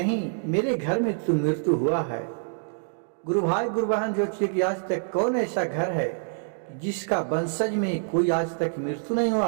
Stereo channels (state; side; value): silent; left; digital silence